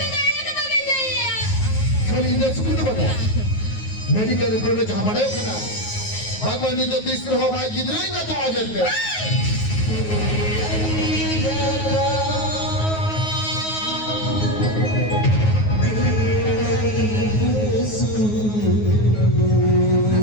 मेडिकल रिपोर्ट में जहाँ बड़े ना भगवान ने तो तीसरे हो भाई जितने ही ना तो आ जाते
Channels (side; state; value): right; late; 9.4 ms